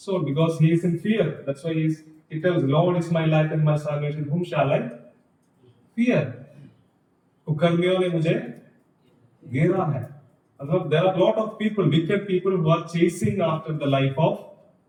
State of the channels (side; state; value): both; identical; correlation 1.00